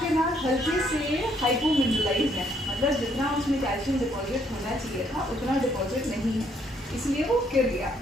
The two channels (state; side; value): normal; both; correlation 0.69